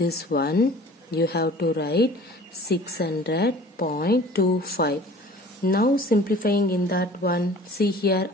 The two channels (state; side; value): normal; both; correlation 0.46